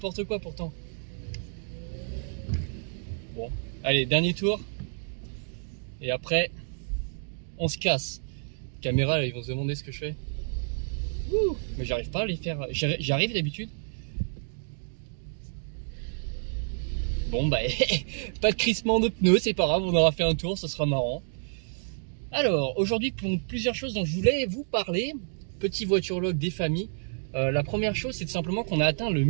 quoi pourtant. Bon, allez, dernier tour. Et après, on se casse. Caméra, là, ils vont se demander ce que je fais. Ouh, mais j'arrive pas à les faire. J'arrive d'habitude. Bon, bah, pas de crissement de pneus, c'est pas grave, on aura fait un tour, ce sera marrant. Alors, aujourd'hui, pour plusieurs choses dont je voulais vous parler, petit voiture-log des familles. La première chose, c'est tout simplement qu'on a atteint le 1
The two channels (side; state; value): left; silent; digital silence